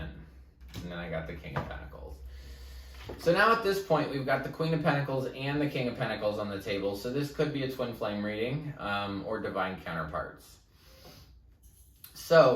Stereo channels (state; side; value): identical; both; correlation 1.00